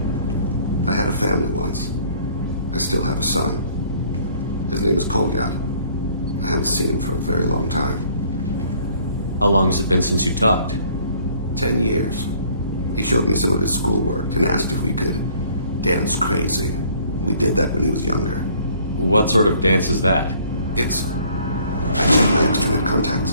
I had a family once. I still have a son. His name is Kolyat. I haven't seen him for a very long time. How long has it been since you talked? 10 years. He showed me some of his schoolwork and asked if we could dance crazy. We did that when he was younger. What sort of dance is that? I checked my extranet contacts.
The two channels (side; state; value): both; inverted; correlation -0.58